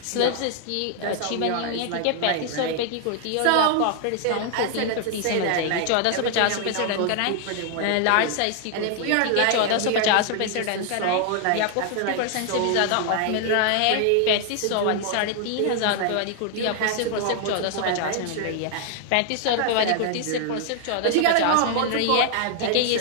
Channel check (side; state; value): both; different; correlation 0.00